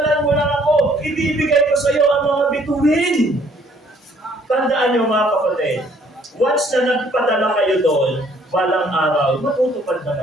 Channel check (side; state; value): both; normal; correlation 0.62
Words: mo lang ako. Ibibigay ko sa'yo ang mga bituin. Tandaan niyo mga kapatid, once na nagpadala kayo doon, balang araw, matutupad